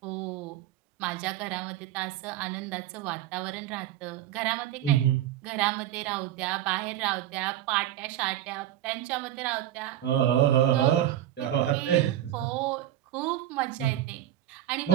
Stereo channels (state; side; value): quieter; left; 12.3 dB